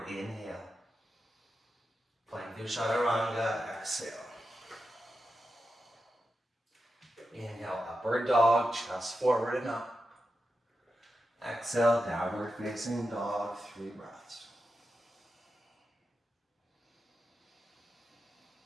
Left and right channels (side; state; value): both; normal; correlation 0.89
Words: inhale. Plank through chaturanga, exhale. Inhale, upward dog, chest forward and up. Exhale, downward facing dog, 3 breaths.